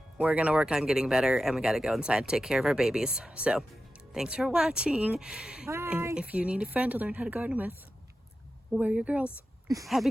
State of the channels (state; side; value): normal; both; correlation 0.92